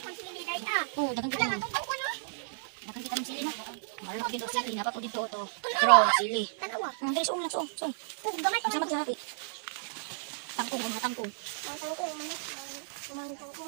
Oh, dagang kita mo. Dagang kita ng sili na. Marunong dito sili. Napa ko dito ito. Pero sili. Dali suong lang, suong. Sama sa hati. Tangkong, mga tangkong.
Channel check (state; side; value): silent; left; 56 dB below the other